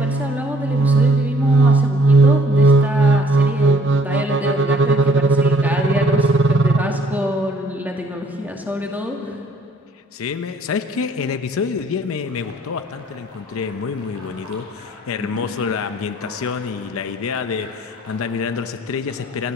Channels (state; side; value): normal; both; correlation 0.60